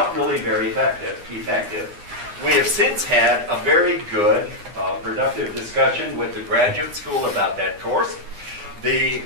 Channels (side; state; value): left; late; 9.8 ms